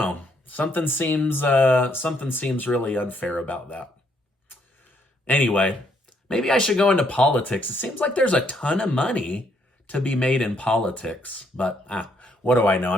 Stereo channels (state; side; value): normal; both; correlation 0.71